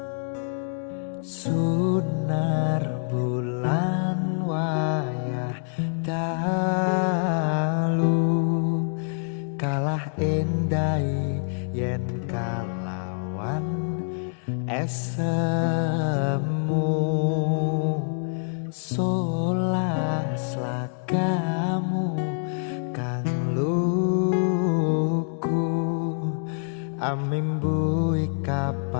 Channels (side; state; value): right; silent; digital silence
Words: Sunar bulan wayah dalu kalah endai yen kalawan esemu solas lagamu kang luku amimbu